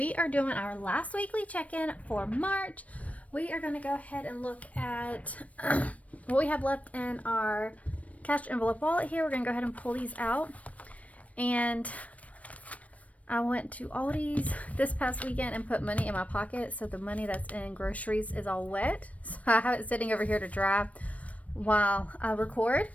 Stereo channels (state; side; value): late; right; 0.067 ms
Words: are doing our last weekly check-in for March. We are going to go ahead and look at what we have left in our cash envelope wallet here. We're going to go ahead and pull these out. And I went to Aldi's this past weekend and put money in my pocket, so the money that's in groceries is all wet. So I have it sitting over here to dry while I record.